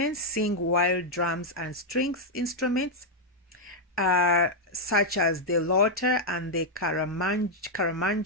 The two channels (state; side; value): normal; both; correlation -0.02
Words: sing while drums and strings instruments such as the loter and the